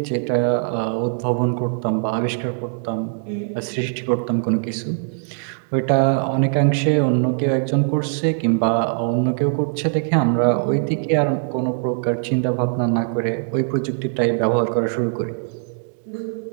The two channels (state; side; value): silent; left; digital silence